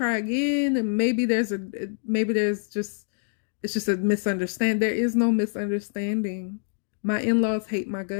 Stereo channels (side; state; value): right; silent; digital silence